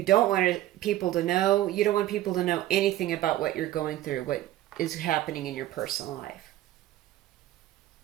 don't want people to know. You don't want people to know anything about what you're going through, what is happening in your personal life.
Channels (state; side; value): quieter; left; 14.5 dB